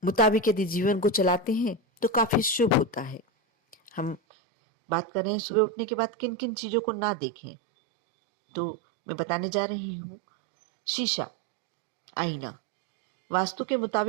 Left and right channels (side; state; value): left; drops out; at 4.2 s